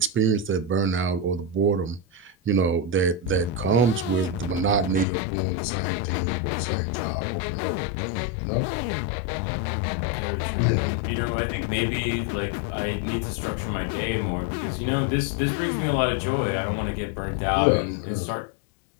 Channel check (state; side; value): drops out; right; at 5.1 s